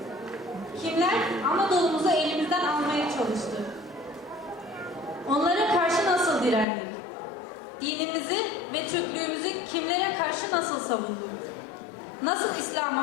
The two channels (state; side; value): drops out; right; at 6.7 s